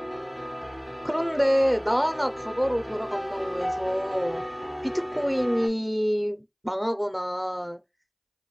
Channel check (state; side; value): identical; both; correlation 1.00